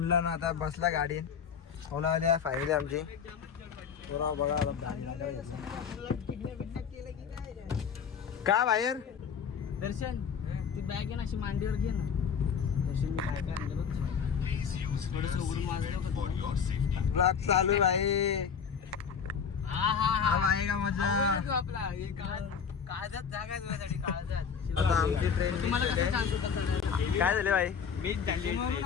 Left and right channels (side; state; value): right; quieter; 6.8 dB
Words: ना आता बसला गाडीत ओला आल्या फायनली आमची बघा का बाहेर दर्शन ती बॅग आहे ना अशी मांडीवर घे ना दर्शन ब्लॉग चालू आहे आहे का मजा आपला काळजात जागा आहे तुझ्यासाठी काळजात आता आमची ट्रेन तुम्हाला कसं सांगतो काय झाले भाई मी